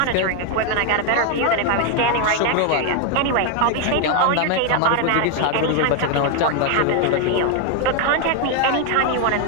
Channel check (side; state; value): both; different; correlation 0.01